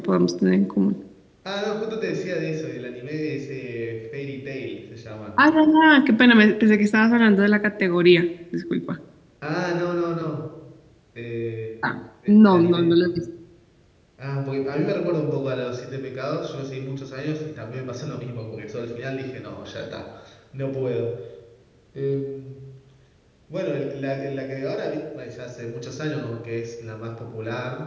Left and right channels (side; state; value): both; identical; correlation 1.00